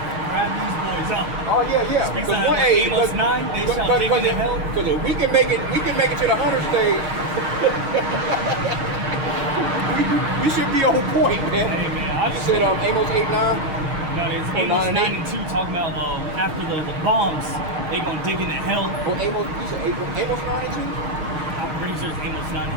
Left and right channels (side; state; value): left; late; 6.4 ms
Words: these boys out. Oh yeah. Speaks out of Amos 9. They shall dig into hell. Because if we can make it to the hunter stage. We should be on point, man. Hey, man, I just said Amos 8:9. It's Amos 9:2 talking about after the bombs, they gonna dig into hell. Well, Amos 9:2? I'm pretty sure it's Amos